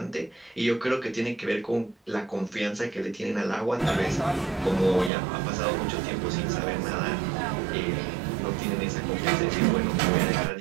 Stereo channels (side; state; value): left; drops out; at 5.1 s